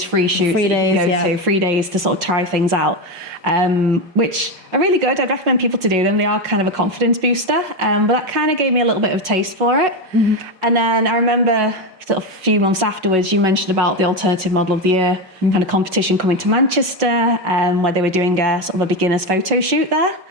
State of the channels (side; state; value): left; late; 5.4 ms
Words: free shoots. 3 days, yeah. 3 days to sort of try things out, which are really good. I'd recommend people to do them. They are kind of a confidence booster, but that kind of gave me a little bit of a taste for it. Mm-hmm. And then I remember sort of a few months afterwards, you mentioned about the Alternative Model of the Year kind of competition coming to Manchester, where they were doing a sort of a beginner's photo shoot there.